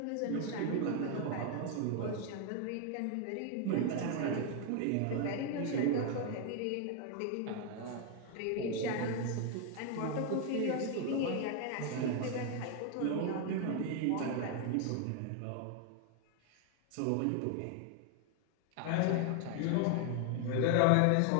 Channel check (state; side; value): different; both; correlation 0.00